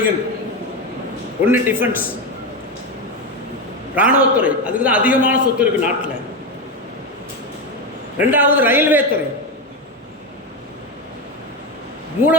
ஒன்று டிஃபென்ஸ், இராணுவத்துறை, அதுக்கு தான் அதிகமான சொத்து இருக்குது நாட்டில். ரெண்டாவது ரயில்வே துறை,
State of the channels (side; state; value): both; normal; correlation 0.14